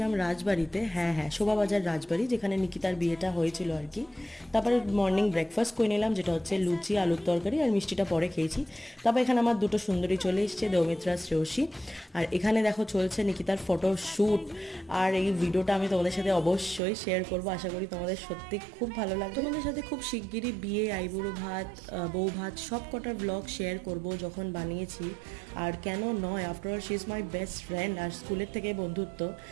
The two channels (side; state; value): left; drops out; at 16.8 s